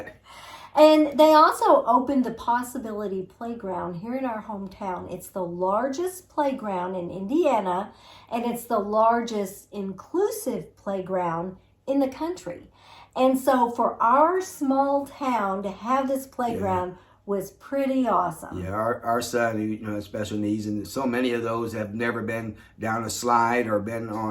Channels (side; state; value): both; identical; correlation 1.00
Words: And they also opened the Possibility Playground here in our hometown. It's the largest playground in Indiana, and it's the largest inclusive playground in the country. And so for our small town to have this playground was pretty awesome. Yeah, our son, who has special needs, and so many of those have never been down a slide or been